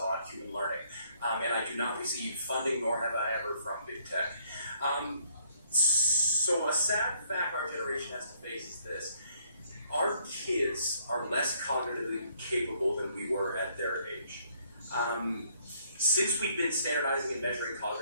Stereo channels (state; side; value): inverted; both; correlation -0.65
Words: human learning. And I do not receive funding, nor have I ever, from big tech. So a sad fact our generation has to face is this. Our kids are less cognitively capable than we were at their age. Since we've been standardizing and measuring